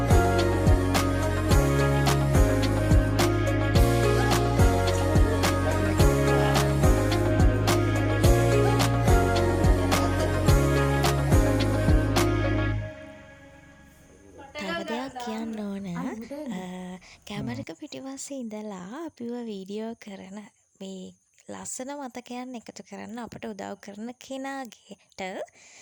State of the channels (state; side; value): identical; both; correlation 1.00